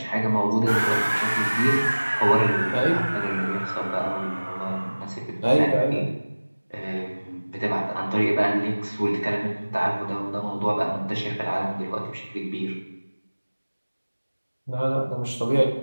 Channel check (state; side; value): inverted; both; correlation -1.00